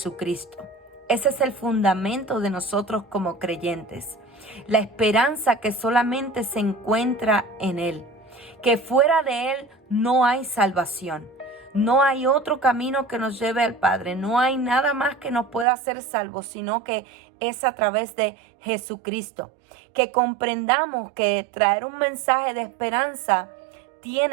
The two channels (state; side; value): drops out; left; at 15.7 s